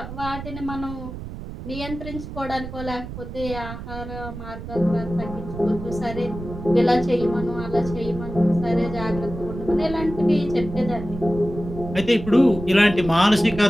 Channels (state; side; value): noise; right; rumble, 10 dB below the sound